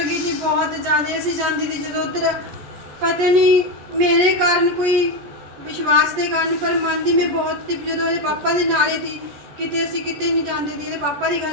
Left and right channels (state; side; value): late; left; 14 ms